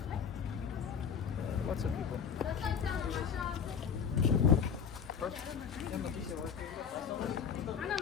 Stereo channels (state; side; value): quieter; right; 7.0 dB